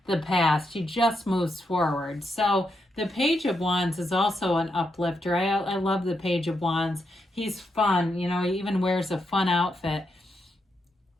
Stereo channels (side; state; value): both; normal; correlation 0.82